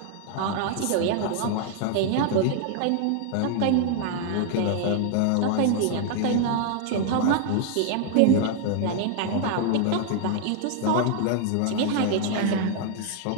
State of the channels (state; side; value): different; both; correlation 0.00